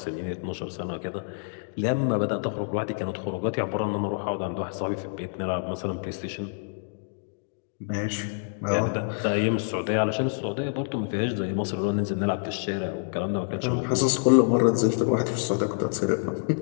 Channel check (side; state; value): right; silent; digital silence